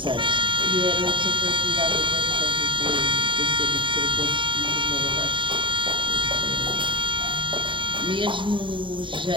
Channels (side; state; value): left; late; 0.24 ms